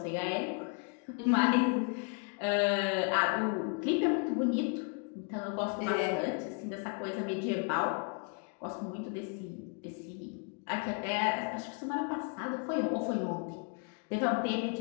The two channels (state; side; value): quieter; right; 37.6 dB